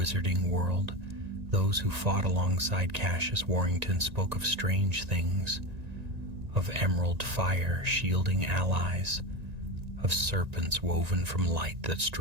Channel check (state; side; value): late; left; 1.9 ms